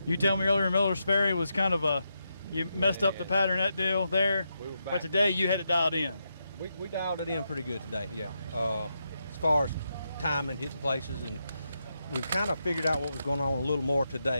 You tell me earlier Miller's Ferry was kind of you messed up the pattern, that deal there, but today you had it dialed in. We dialed it in pretty good today, yeah. As far as time and hitting places, and we've kind of figured out what was going on a little more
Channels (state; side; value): inverted; both; correlation -0.84